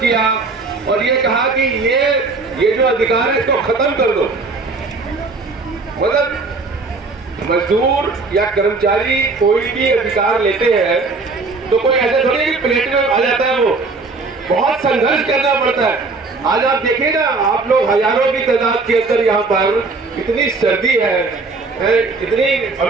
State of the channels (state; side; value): quieter; left; 3.9 dB